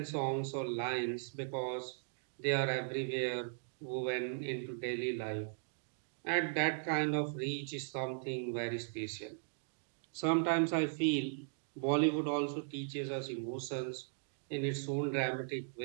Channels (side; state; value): left; silent; digital silence